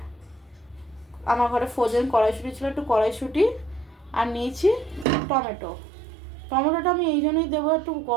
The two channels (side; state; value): left; drops out; at 5.1 s